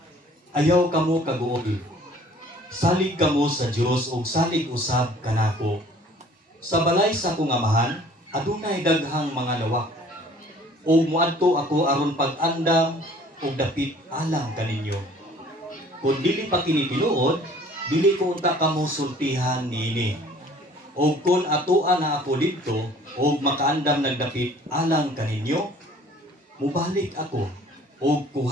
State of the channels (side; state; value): both; normal; correlation 0.53